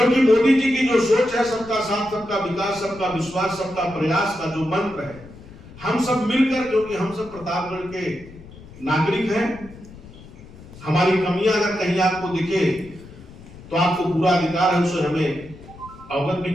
मोदी जी की जो सोच है, सबका साथ सबका विकास सबका विश्वास सबका प्रयास का जो मंत्र है, हम सब मिलकर, क्योंकि हम सब प्रतापगढ़ के नागरिक हैं, हमारी कमियां अगर कहीं आपको दिखे तो आपको पूरा अधिकार है उसे हमें अवगत भी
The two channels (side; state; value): left; noise; rumble, 19 dB below the sound